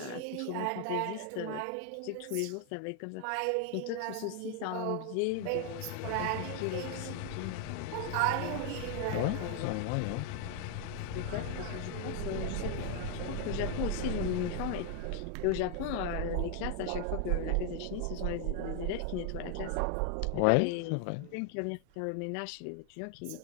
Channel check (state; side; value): different; both; correlation 0.00